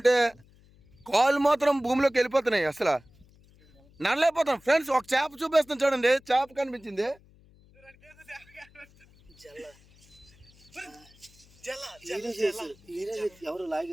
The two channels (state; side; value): noise; left; hum, 28 dB below the sound